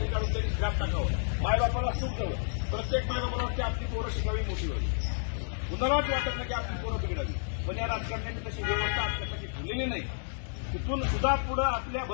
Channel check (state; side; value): silent; right; 57 dB below the other